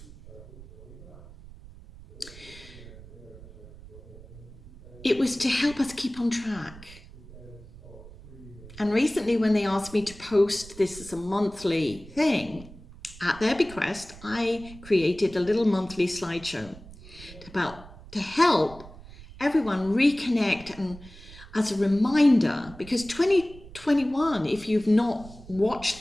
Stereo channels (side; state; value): right; noise; rumble, 18 dB below the sound